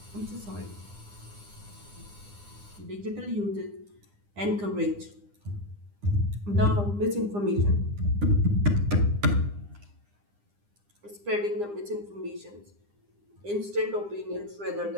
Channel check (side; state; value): left; late; 9.9 ms